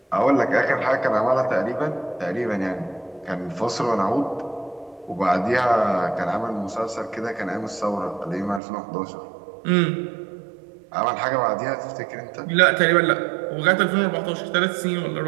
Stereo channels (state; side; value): drops out; left; at 8.6 s